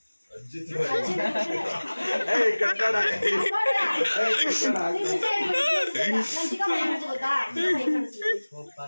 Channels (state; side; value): inverted; both; correlation -1.00